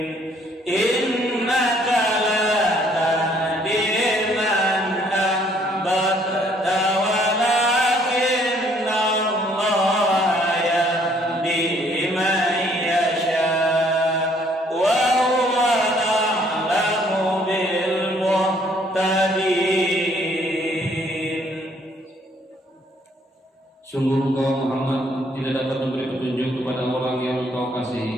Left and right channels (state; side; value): normal; both; correlation 0.64